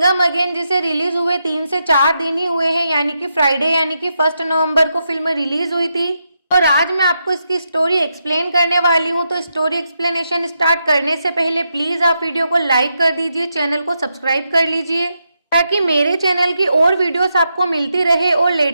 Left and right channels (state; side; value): inverted; both; correlation -0.84